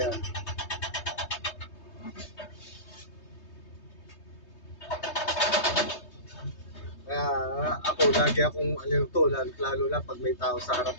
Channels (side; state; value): right; late; 3.2 ms